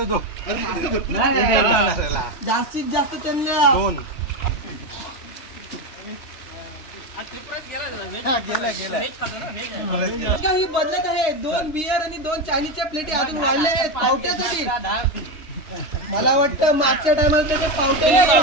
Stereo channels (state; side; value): late; right; 3.2 ms